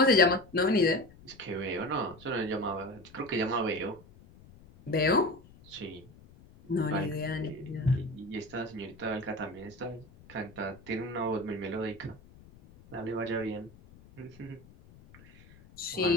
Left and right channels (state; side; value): noise; left; rumble, 23 dB below the sound